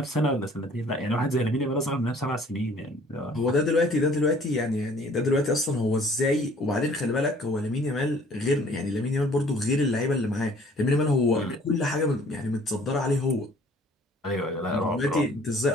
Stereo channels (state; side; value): normal; both; correlation 0.55